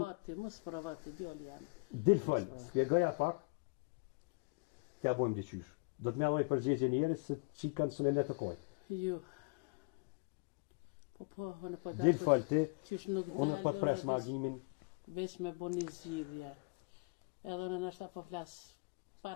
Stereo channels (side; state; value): right; quieter; 30.8 dB